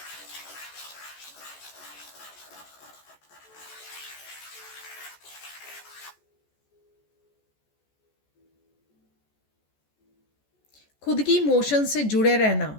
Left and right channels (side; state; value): right; late; 14 ms